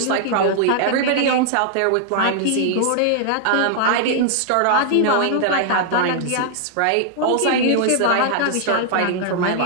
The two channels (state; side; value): different; both; correlation -0.01